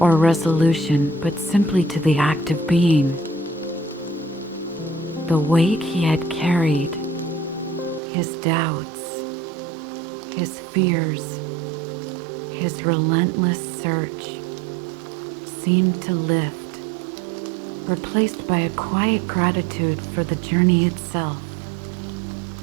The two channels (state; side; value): drops out; left; at 8.0 s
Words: resolution, but simply to the act of being. The weight he had carried, his doubts, his fears, his relentless search, seemed to lift, replaced by a quiet gratitude for the journey itself.